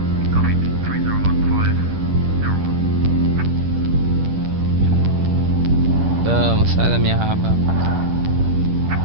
Vamos, sai da minha raba.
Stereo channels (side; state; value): left; late; 10 ms